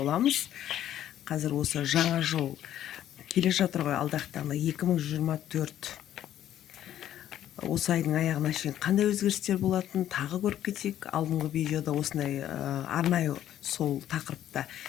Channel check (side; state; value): right; quieter; 11.6 dB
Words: Қазір осы жаңа жыл келе жатыр ғой, алдағы таңда 2024. Осы айдың аяғына шейін қандай өзгерістер болатын тағы көріп кетейік. Алдыңғы видеода осындай арнайы сол тақырыпта